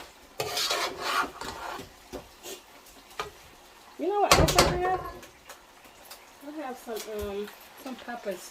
You know what else I have? I have some peppers.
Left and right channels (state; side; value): identical; both; correlation 1.00